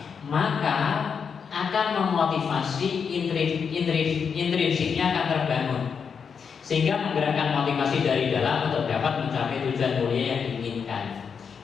maka akan memotivasi intrinsiknya akan terbangun, sehingga menggerakkan motivasi dari dalam untuk dapat mencapai tujuan mulia yang diinginkan.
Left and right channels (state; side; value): quieter; right; 6.4 dB